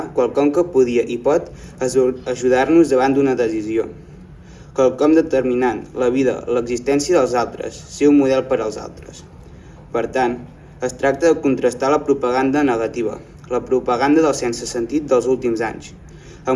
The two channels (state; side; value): identical; both; correlation 1.00